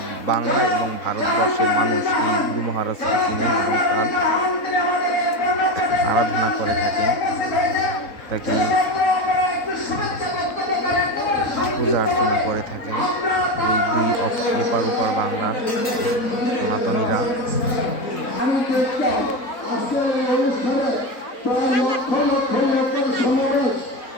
বাংলা এবং ভারতবর্ষের মানুষ এই গুরু মহারাজকে চিনেন এবং তার আরাধনা করে থাকেন, তাকে পূজা অর্চনা করে থাকেন এই দুই এপার ওপার বাংলার সনাতনীরা।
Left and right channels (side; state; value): right; late; 3.9 ms